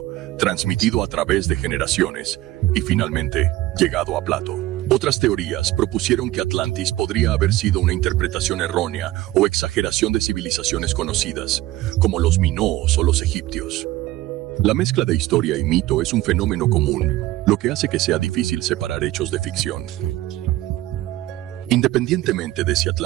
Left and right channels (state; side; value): quieter; left; 16.3 dB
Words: transmitido a través de generaciones, y finalmente llegado a Plato. Otras teorías propusieron que Atlantis podría haber sido una interpretación errónea o exageración de civilizaciones conocidas, como los minoos o los egipcios. La mezcla de historia y mito es un fenómeno común, lo que hace que sea difícil separar hechos de ficción. Independientemente de si